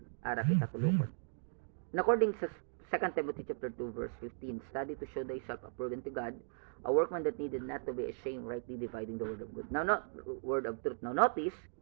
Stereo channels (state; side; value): silent; left; digital silence